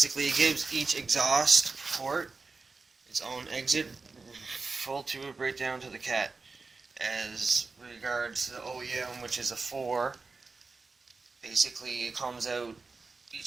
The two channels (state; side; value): quieter; left; 4.1 dB